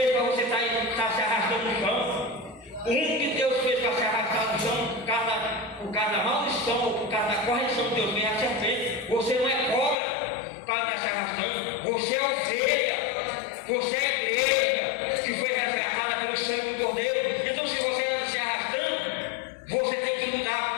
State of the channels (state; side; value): drops out; right; at 10.0 s